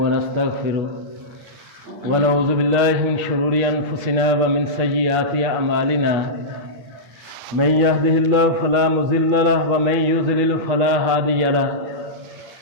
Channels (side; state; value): left; late; 8.5 ms